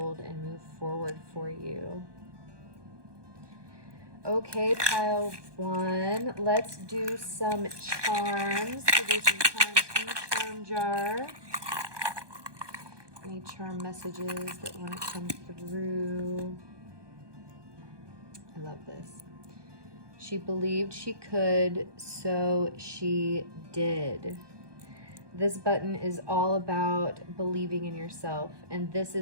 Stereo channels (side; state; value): left; late; 1.2 ms